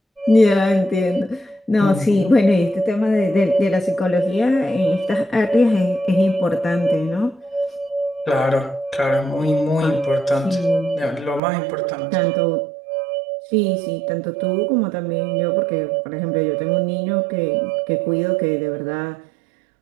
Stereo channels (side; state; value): left; drops out; at 11.4 s